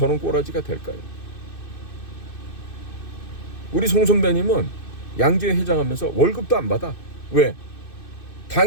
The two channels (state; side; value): late; right; 2.6 ms